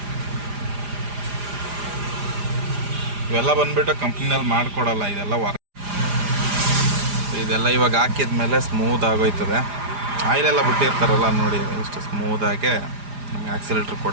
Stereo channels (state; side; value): late; left; 4.9 ms